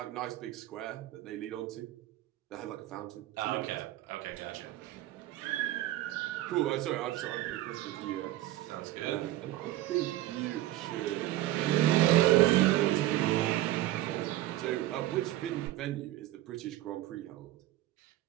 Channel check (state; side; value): quieter; left; 15.0 dB